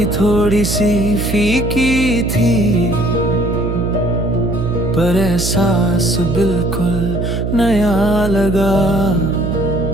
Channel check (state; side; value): noise; right; hum, 2 dB below the sound